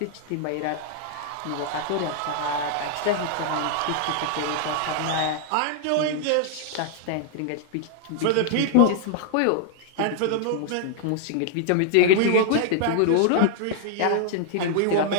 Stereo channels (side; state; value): both; different; correlation 0.00